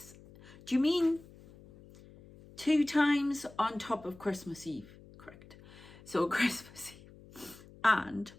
Do you mean 2 times on top of Christmas Eve? Correct. So Christmas Eve and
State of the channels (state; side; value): noise; left; hum, 21 dB below the sound